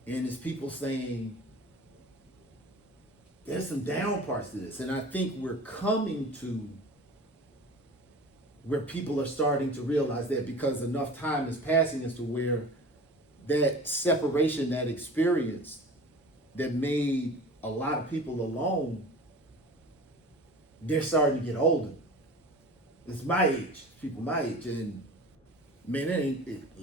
and it's people saying there's some down parts to this. And I think we're coming to where people are starting to realize that, because enough time is passing as to where that separation, that experience that made a lot of people alone, they're starting to get older. It's my age, people my age, and man,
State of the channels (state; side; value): normal; both; correlation 0.39